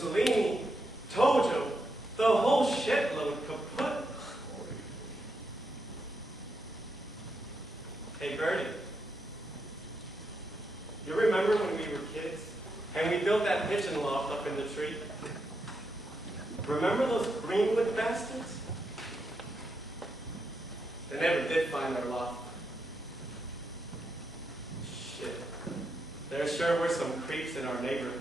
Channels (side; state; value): both; normal; correlation 0.83